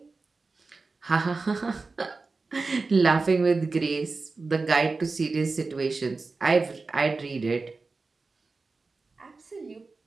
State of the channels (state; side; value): quieter; left; 3.9 dB